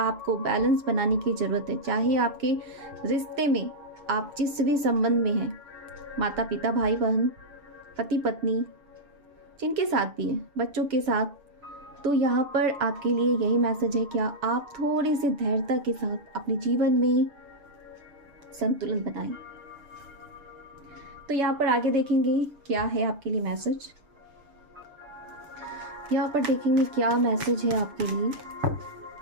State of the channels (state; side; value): late; left; 7.0 ms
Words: बैलेंस बनाने की ज़रूरत है। चाहे आपके रिश्ते में, आप जिस भी संबंध में हैं, माता पिता, भाई बहन, पति पत्नी, जिनके साथ भी हैं, बच्चों के साथ, तो यहाँ पर आपके लिए यही मैसेज है, क्या आप थोड़ी सी धैर्यता के साथ अपने जीवन में संतुलन बनाएं। तो यहाँ पर आगे देखेंगे क्या है आपके लिए मैसेज। यहाँ पर देखेंगे क्या मैसेज है आपके लिए,